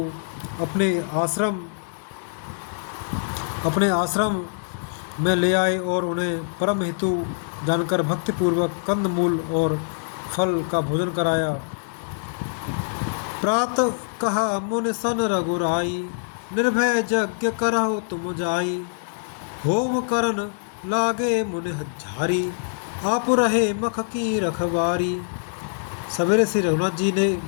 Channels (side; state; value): right; silent; digital silence